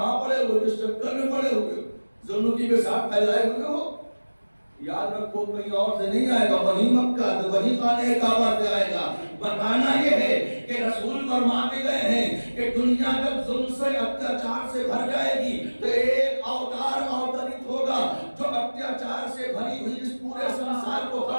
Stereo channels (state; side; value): inverted; both; correlation -1.00